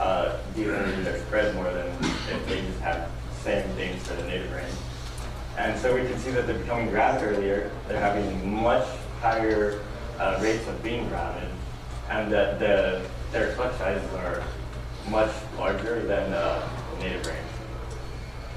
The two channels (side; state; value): both; identical; correlation 1.00